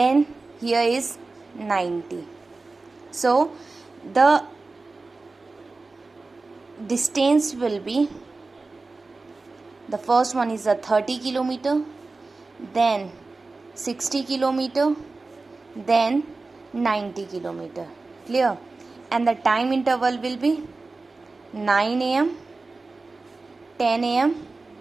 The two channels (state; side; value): quieter; left; 3.6 dB